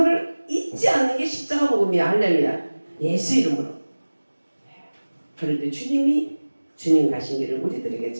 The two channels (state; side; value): inverted; both; correlation -1.00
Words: 잊지 않는 게 십자가 복음이야. 할렐루야. 예수 이름으로. 그럴 때 주님이 주님 가신 길을 우리들에게